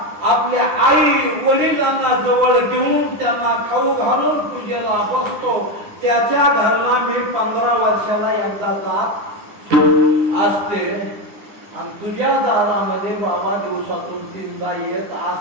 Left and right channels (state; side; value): late; left; 9.9 ms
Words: आपल्या आई वडिलांना जवळ घेऊन त्यांना खाऊ घालून पूजेला बसतो. त्याच्या घरला मी 15 वर्षाला एकदा जात असते. आणि तुझ्या दारामध्ये बाबा दिवसातून 3दा येत